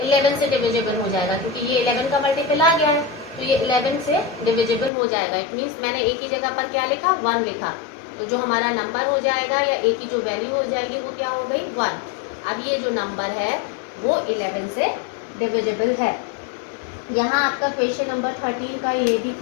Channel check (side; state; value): right; drops out; at 4.9 s